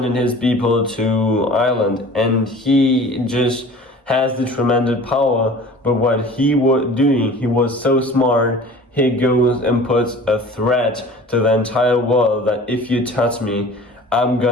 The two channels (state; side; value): normal; both; correlation 0.43